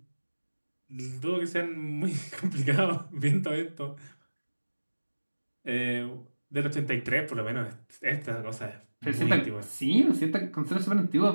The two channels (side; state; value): both; inverted; correlation -1.00